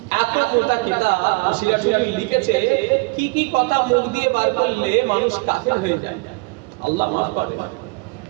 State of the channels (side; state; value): left; quieter; 28.6 dB